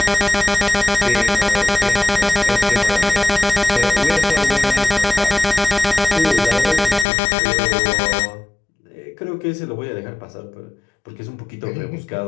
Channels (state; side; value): drops out; right; at 7.1 s